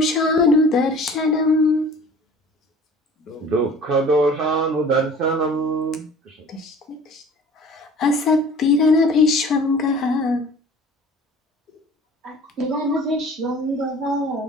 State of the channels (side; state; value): both; normal; correlation 0.45